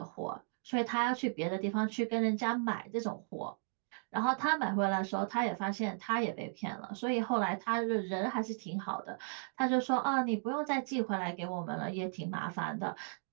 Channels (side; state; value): left; silent; digital silence